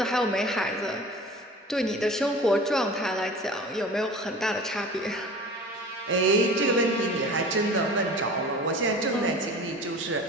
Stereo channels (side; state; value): both; normal; correlation 0.39